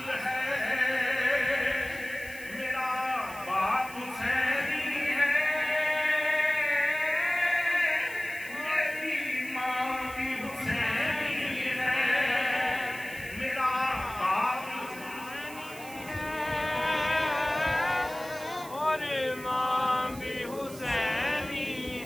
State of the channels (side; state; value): right; noise; hiss, 17 dB below the sound